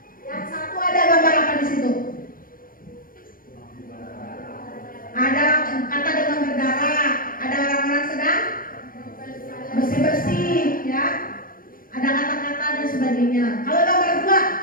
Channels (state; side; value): late; right; 0.41 ms